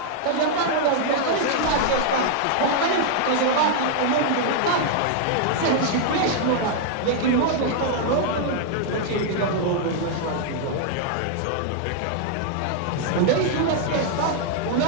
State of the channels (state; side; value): different; both; correlation 0.00